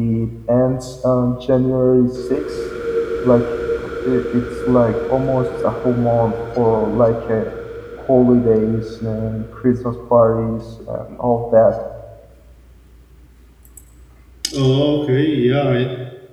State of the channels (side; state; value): both; identical; correlation 1.00